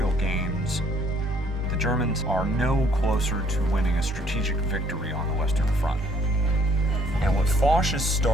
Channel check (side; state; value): both; normal; correlation 0.63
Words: gains, the Germans are no closer to winning a strategic victory on the Western Front. And what Foch is